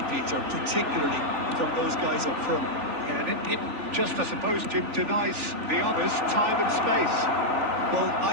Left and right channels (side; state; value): left; late; 3.6 ms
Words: Peter, particularly from those guys up front. Yeah, and it just, I suppose, Jim, denies the others time and space. Well,